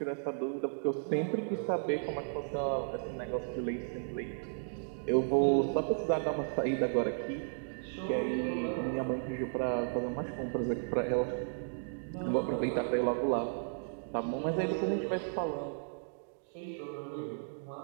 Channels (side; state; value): left; silent; digital silence